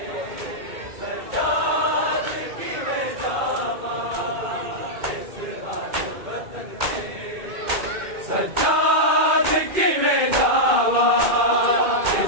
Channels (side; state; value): left; late; 2.2 ms